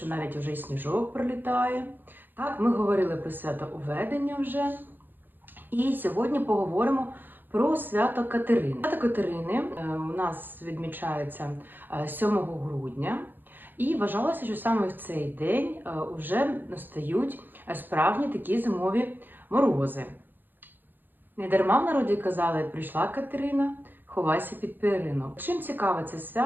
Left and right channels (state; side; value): late; left; 0.091 ms